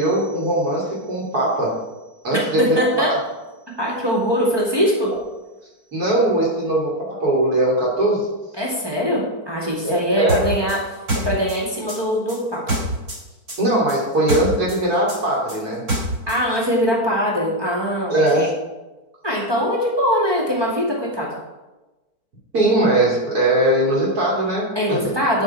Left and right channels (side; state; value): left; late; 4.5 ms